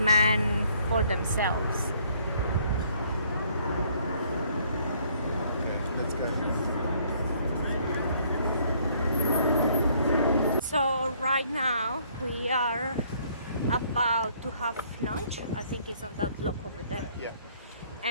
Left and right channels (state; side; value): inverted; both; correlation -0.63